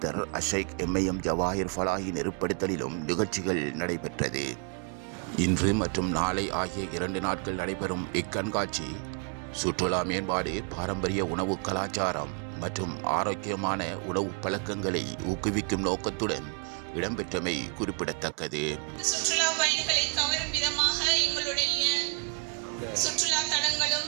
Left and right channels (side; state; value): left; quieter; 38.8 dB